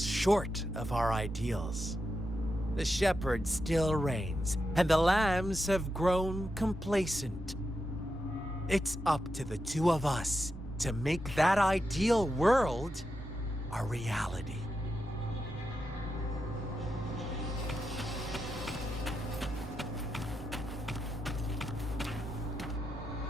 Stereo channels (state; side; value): normal; both; correlation 0.87